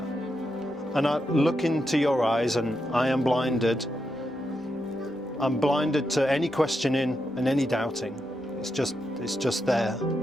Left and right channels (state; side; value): normal; both; correlation 0.84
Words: And I look into your eyes and I am blinded. I'm blinded to any questioning and any doubting. It's just there.